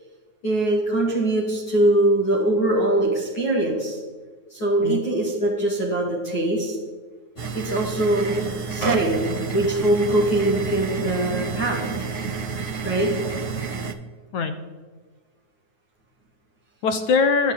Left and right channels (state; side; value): late; right; 9.4 ms